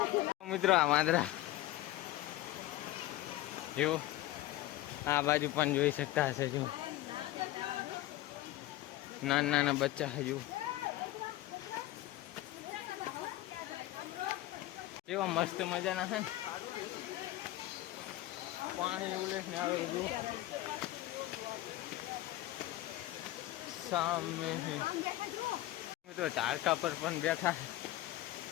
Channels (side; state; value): right; quieter; 16.0 dB